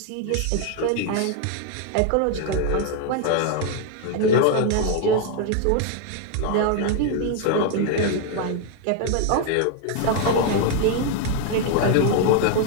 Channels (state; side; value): different; both; correlation 0.00